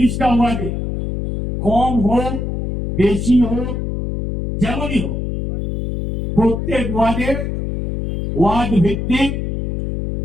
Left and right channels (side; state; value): left; noise; hum, 2 dB below the sound